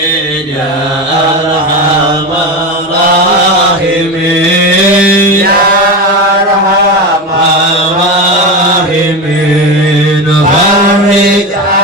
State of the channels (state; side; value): normal; both; correlation 0.20